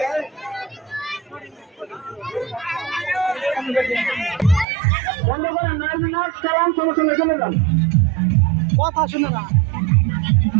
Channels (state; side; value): drops out; left; at 4.7 s